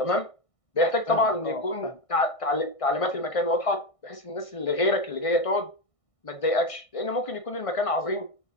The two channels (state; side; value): late; right; 1.6 ms